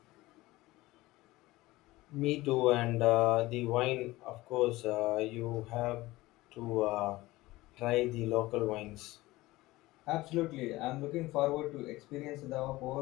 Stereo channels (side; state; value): right; quieter; 19.0 dB